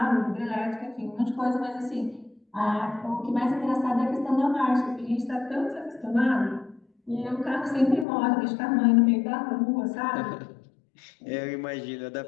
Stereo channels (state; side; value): drops out; right; at 8.1 s